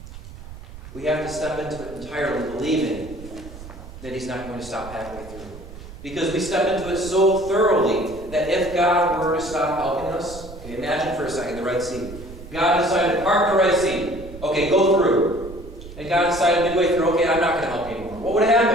we have to step into it entirely believing that He's not going to stop halfway through. Because we step into it so thoroughly that if God were to stop helping us, okay, imagine for a second the Red Sea. God decided to part the Red Sea. Okay, go through. And God decided midway through, okay, I'm not going to help you anymore. What would have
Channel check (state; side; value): noise; right; rumble, 15 dB below the sound